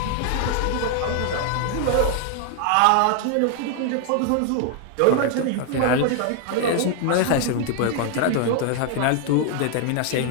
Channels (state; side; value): different; both; correlation 0.00